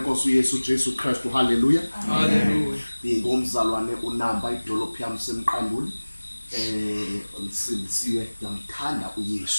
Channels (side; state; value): both; inverted; correlation -1.00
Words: Yesu Jesu Kristu. Hallelujah. Hallelujah. Ngomzalwane uNamba idolophu yami semqanduli. Ngisindisiwe ngiyamthanda